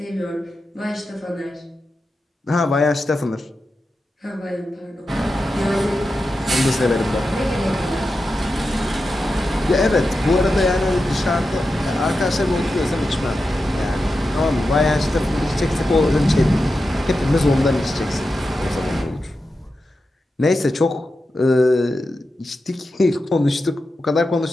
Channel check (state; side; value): normal; both; correlation 0.90